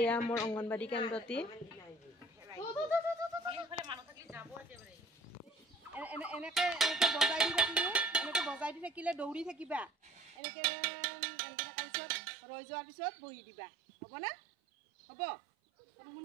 এয়া মোৰ অংগনবাড়ী কেন্দ্ৰটি এনেকে বজাই দি থাকিলে দৌৰি থাকিবা এনেকে তাৰপিছত ৰৈ যোৱাৰ পিছত বহি দিবা হ'ব না হ'ব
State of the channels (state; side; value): drops out; left; at 10.4 s